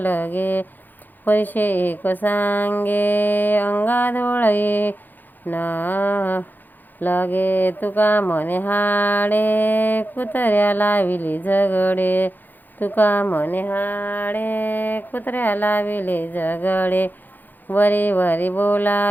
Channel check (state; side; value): late; right; 0.087 ms